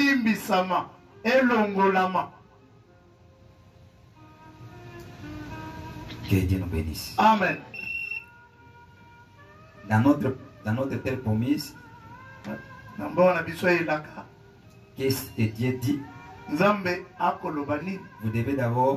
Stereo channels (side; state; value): both; identical; correlation 1.00